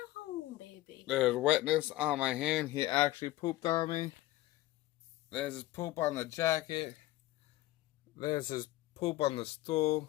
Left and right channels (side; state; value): right; quieter; 16.8 dB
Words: home, baby. There's wetness on my hand. He actually pooped on me. There's his poop on the jacket. There's his poop on the stool.